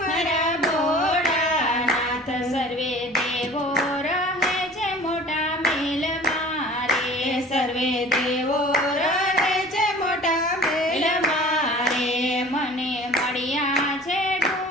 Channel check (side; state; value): both; normal; correlation 0.44